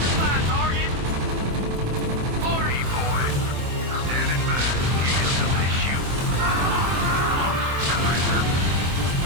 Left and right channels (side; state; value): left; late; 24 ms